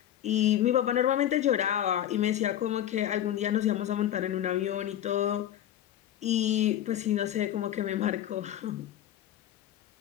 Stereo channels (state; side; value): quieter; right; 11.5 dB